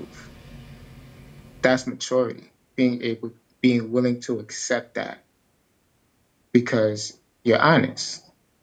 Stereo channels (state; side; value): identical; both; correlation 1.00